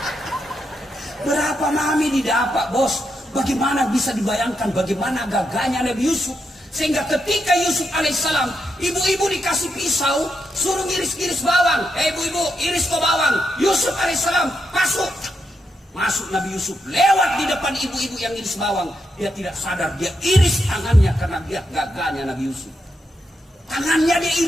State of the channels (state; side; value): normal; both; correlation 0.83